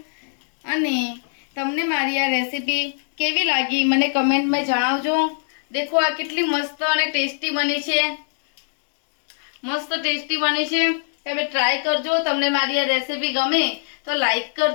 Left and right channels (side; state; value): right; silent; 64 dB below the other